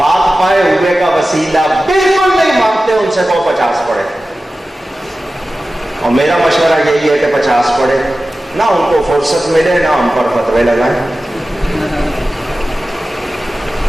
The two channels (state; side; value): normal; both; correlation 0.95